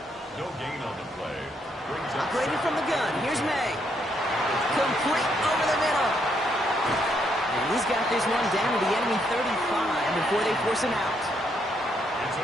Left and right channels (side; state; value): both; normal; correlation 0.74